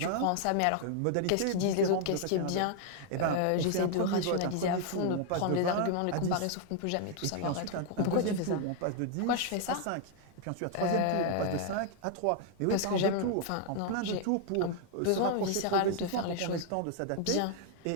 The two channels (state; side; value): different; both; correlation 0.00